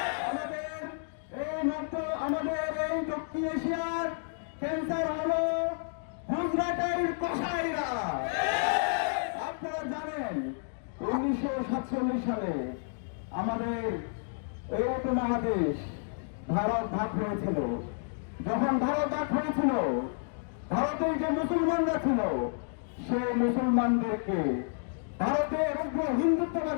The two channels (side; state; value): right; silent; digital silence